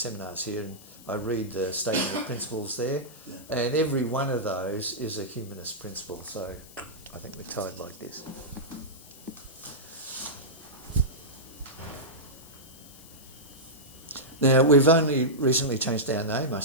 here, and I read the statement of principles there, and every one of those is a humanist principle. So I think we're tied like this. Now, we've only recently changed our name, I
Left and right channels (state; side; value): noise; left; hiss, 20 dB below the sound